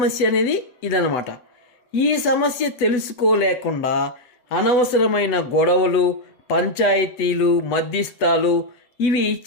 అనేది ఇదన్నమాట. ఈ సమస్య తెలుసుకోలేకుండా అనవసరమైన గొడవలు, పంచాయతీలు, మధ్యస్థాలు ఇవి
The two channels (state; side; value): late; right; 8.1 ms